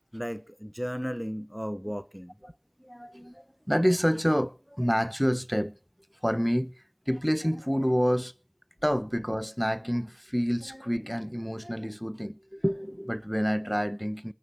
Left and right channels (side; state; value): both; identical; correlation 1.00